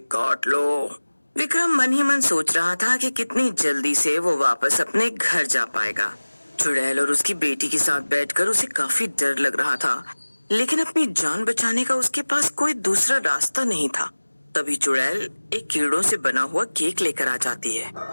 काट लो। विक्रम मन ही मन सोच रहा था कि कितनी जल्दी से वो वापस अपने घर जा पाएगा। चुड़ैल और उसकी बेटी के साथ बैठकर उसे काफी डर लग रहा था, लेकिन अपनी जान बचाने का उसके पास कोई दूसरा रास्ता नहीं था। तभी चुड़ैल एक कीड़ों से बना हुआ केक लेकर आ जाती है।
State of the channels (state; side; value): inverted; both; correlation -1.00